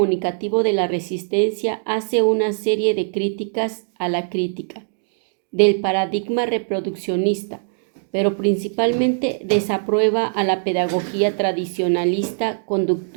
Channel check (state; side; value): silent; left; digital silence